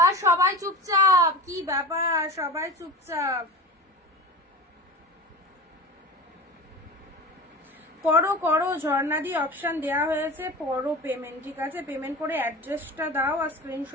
সবাই চুপচাপ, কি ব্যাপার, সবাই চুপচাপ, করো করো, ঝর্ণাদি অপশন দেওয়া হয়েছে, করো পেমেন্ট, ঠিক আছে। পেমেন্ট করে অ্যাড্রেসটা দাও আর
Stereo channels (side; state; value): both; normal; correlation 0.34